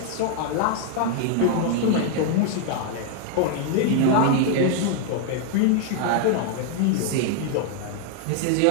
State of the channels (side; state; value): both; different; correlation 0.00